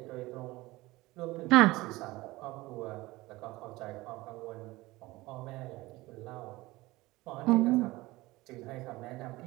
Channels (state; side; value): quieter; left; 20.0 dB